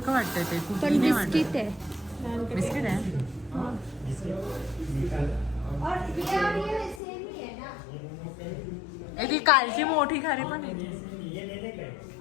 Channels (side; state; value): right; drops out; at 7.0 s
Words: वाटतंय ते, कुठली पण नाही वाटत. बिस्किट है. बिस्किट आहे. और ये सेम ही है ना. ती कालची मोठी खारी पण आहे. ये लेने का है,